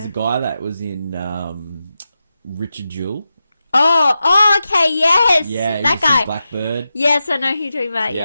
a guy that was in Richard Jewell. Oh, okay, yes. Yeah, that guy. Blackbird. Yes, I know who you're talking about.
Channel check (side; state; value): both; inverted; correlation -0.90